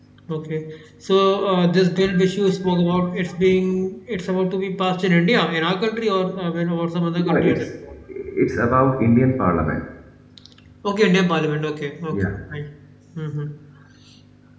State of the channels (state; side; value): identical; both; correlation 1.00